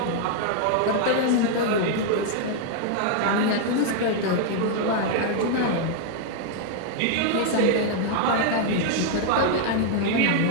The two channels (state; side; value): different; both; correlation 0.00